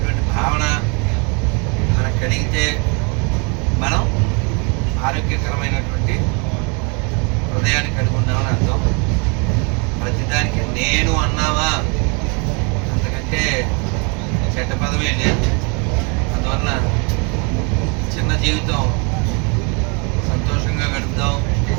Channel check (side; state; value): left; quieter; 33.3 dB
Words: భావన మనకు కలిగితే మనం ఆరోగ్యకరమైనటువంటి హృదయాన్ని కలిగి ఉన్నామని అర్థం. ప్రతిదానికి నేను అన్నావా, అంతకంటే చెడ్డ పదమే లేదు. అందువలన చిన్న జీవితం సంతోషంగా గడుపుదాం,